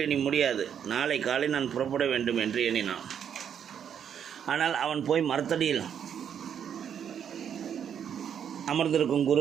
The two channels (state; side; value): quieter; left; 8.5 dB